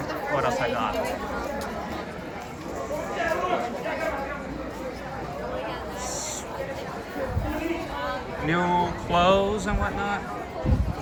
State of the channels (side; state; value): both; identical; correlation 1.00